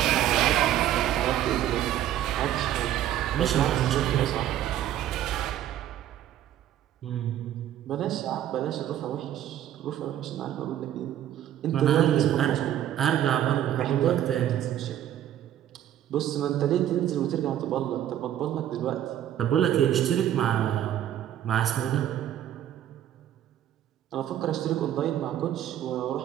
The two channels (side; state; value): left; quieter; 11.6 dB